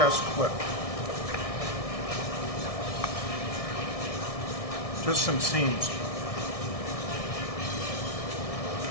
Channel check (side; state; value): right; late; 1.6 ms